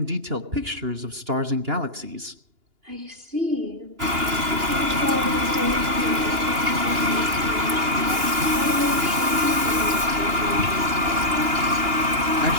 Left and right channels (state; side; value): late; left; 2.9 ms